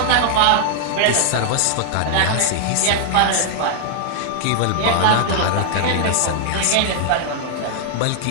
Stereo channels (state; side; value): different; both; correlation 0.00